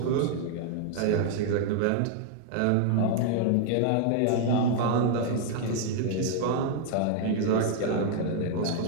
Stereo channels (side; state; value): both; different; correlation 0.00